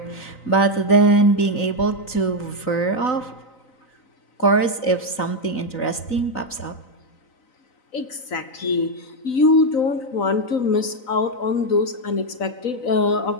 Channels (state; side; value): late; right; 4.0 ms